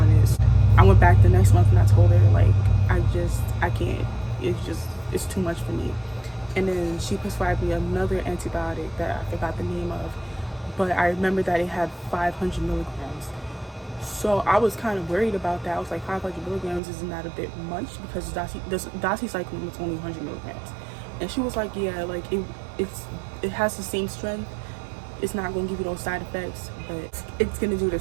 it. I went back the next month and I told her like I can't. It's too much for me. And then she prescribed me another antibiotic that I forgot the name of, but I remember that it had 500 milligrams. So I was kind of worried about that. I was like, 500 milligrams, isn't that a bit much? Because doxycycline was only 100 milligrams. And she was like, yeah, like it has the same strength. It's not going to give you those side effects, but it's going to do the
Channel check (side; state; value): left; drops out; at 16.8 s